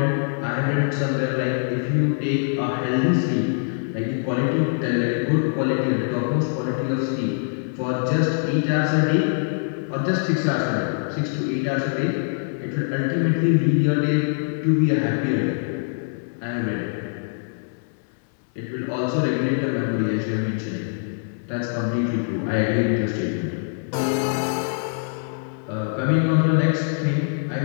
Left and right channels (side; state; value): right; silent; digital silence